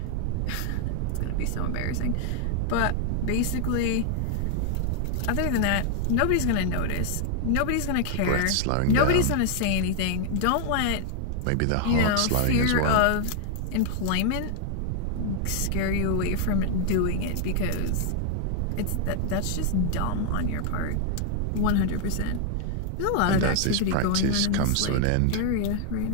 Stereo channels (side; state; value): both; different; correlation 0.00